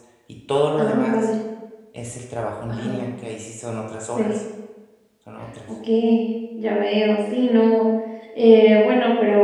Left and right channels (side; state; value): both; identical; correlation 1.00